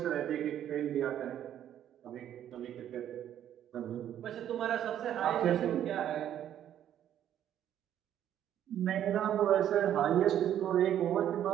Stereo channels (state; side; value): quieter; left; 10.7 dB